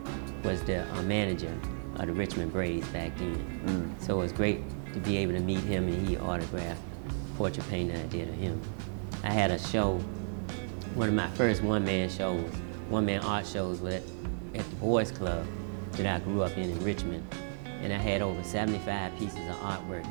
was the manager of the Richmond Braves back then. So it was great to be able to meet him, and he autographed portrait painting I did of him. I had a show, one of my first one-man art shows was at the Boys Club that I grew up in Richmond. And I had over 75 pieces of artwork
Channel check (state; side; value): silent; left; digital silence